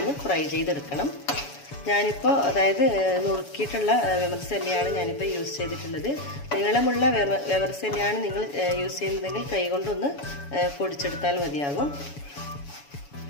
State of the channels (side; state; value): right; late; 7.0 ms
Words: ഫ്രൈ ചെയ്തെടുക്കണം. ഞാനിപ്പോൾ അതായത് നുറുക്കിയിട്ടുള്ള വെമർസെല്ലിയാണ് ഞാനിപ്പോൾ യൂസ് ചെയ്തിട്ടുള്ളത്. നീളമുള്ള വെമർസെല്ലിയാണ് നിങ്ങൾ യൂസ് ചെയ്യുന്നതെങ്കിൽ കൈകൊണ്ടൊന്ന് പൊടിച്ചെടുത്താൽ മതിയാകും.